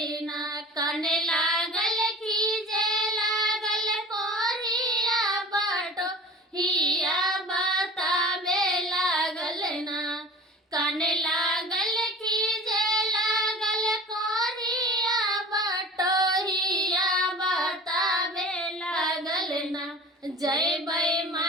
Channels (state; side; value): normal; both; correlation 0.39